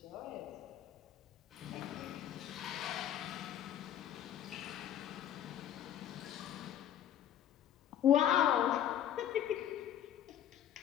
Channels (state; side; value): quieter; right; 10.6 dB